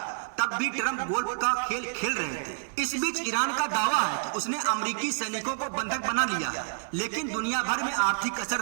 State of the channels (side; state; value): left; silent; 59 dB below the other